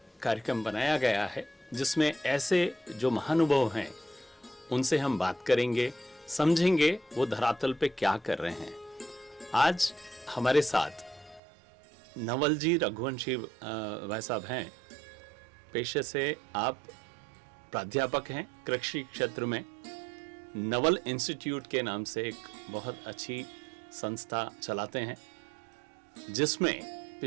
कार्यक्रम बनाया गया है जिसमें ऐसे जो महानुभाव हैं उनसे हम बात करेंगे, समझेंगे वो धरातल पे क्या कर रहे हैं। आज हमारे साथ नवल जी रघुवंशी भाई साहब हैं। पेशे से आप प्राध्यापक हैं कृषि क्षेत्र में। नवल इंस्टीट्यूट के नाम से एक बहुत अच्छी संस्था चलाते हैं जिसमें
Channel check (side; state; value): left; drops out; at 11.4 s